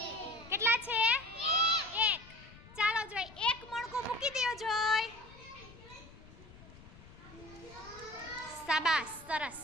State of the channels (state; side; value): noise; left; rumble, 20 dB below the sound